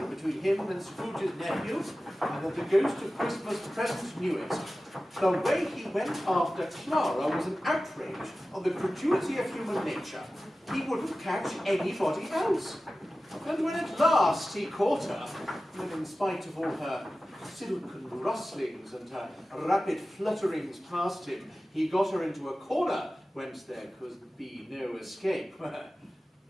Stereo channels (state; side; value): normal; both; correlation 0.95